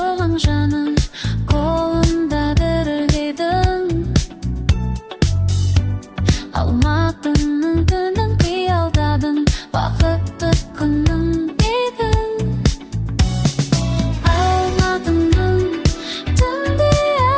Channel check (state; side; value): identical; both; correlation 1.00